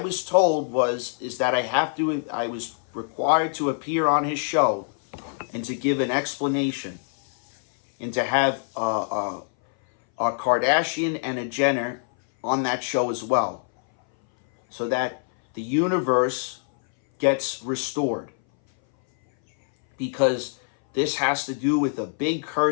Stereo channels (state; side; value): silent; right; 60 dB below the other